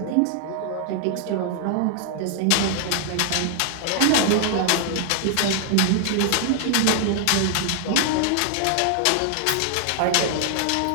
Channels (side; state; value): both; different; correlation 0.00